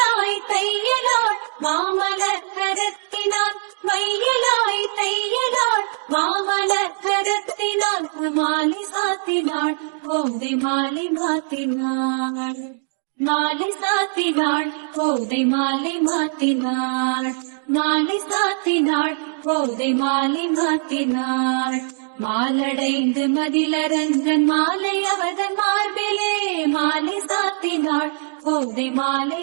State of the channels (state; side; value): silent; left; digital silence